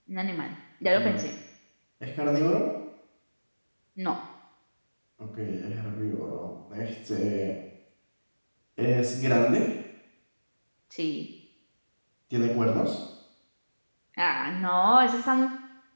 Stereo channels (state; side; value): inverted; both; correlation -1.00